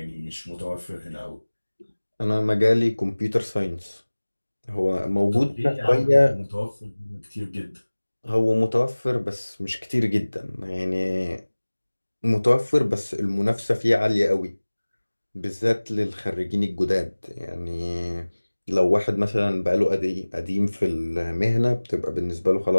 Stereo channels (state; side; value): inverted; both; correlation -1.00